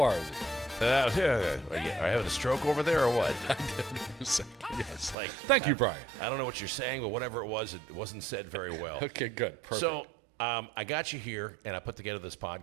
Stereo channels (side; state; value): left; drops out; at 5.2 s